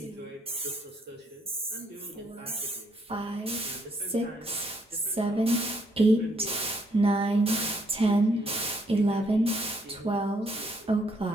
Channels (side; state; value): both; normal; correlation 0.70